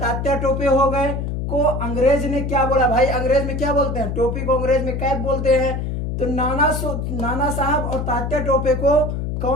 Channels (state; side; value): noise; left; hum, 3 dB below the sound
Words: टोपे हो गए। को अंग्रेज ने क्या बोला भाई, अंग्रेज में क्या बोलते हैं, टोपी को अंग्रेज में कैप बोलते हैं। तो नाना साहब और तात्या टोपे को